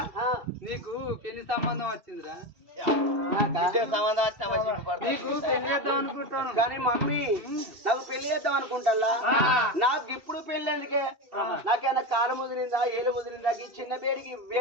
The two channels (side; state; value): left; late; 2.6 ms